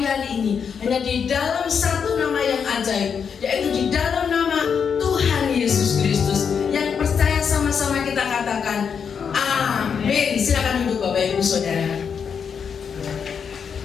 hari ini hanya di dalam satu nama yang ajaib, yaitu di dalam nama Tuhan Yesus Kristus. Yang percaya sama-sama kita katakan amin. Silakan duduk Bapak Ibu Saudara.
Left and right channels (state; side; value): quieter; right; 6.8 dB